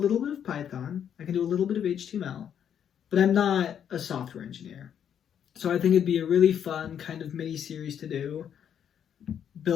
bit of Python. I can do a little bit of HTML, but I'm not a software engineer. So I think it'd be a really fun kind of mini series to do,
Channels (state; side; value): quieter; right; 8.9 dB